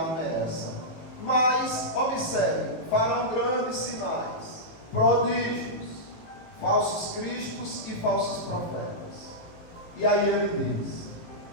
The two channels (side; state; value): right; late; 19 ms